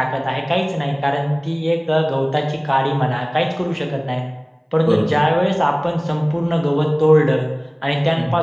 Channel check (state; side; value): identical; both; correlation 1.00